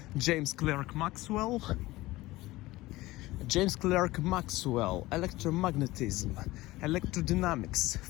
James Clerk Maxwell, electromagnetism, electrodynamics,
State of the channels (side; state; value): right; quieter; 18.7 dB